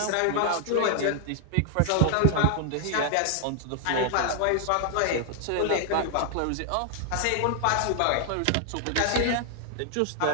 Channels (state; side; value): different; both; correlation 0.00